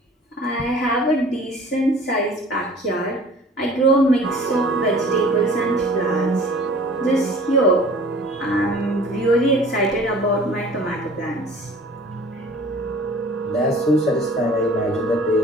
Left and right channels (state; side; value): normal; both; correlation 0.47